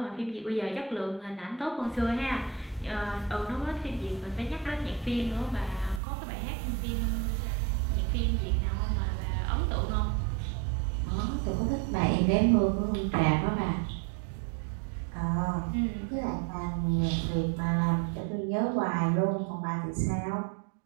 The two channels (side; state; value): left; drops out; at 6.0 s